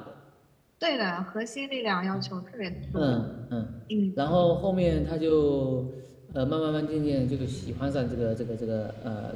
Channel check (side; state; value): both; identical; correlation 1.00